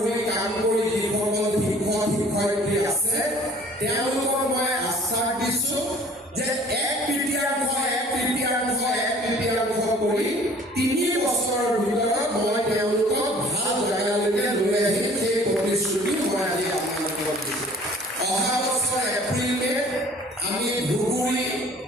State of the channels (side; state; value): both; normal; correlation 0.52